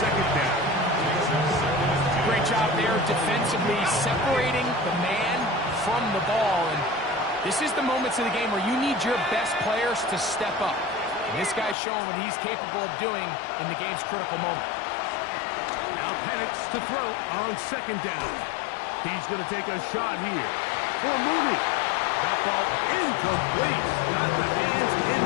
down. Great job there defensively, separating the man from the ball. And this is the moments of the game where you need your best players to step up. And this guy's showing what he's capable of doing in the game's critical moment. Now Penix to throw on second down. He's going to take a shot here for Mooney. That ball incomplete. Got the hands in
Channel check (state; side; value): drops out; right; at 11.8 s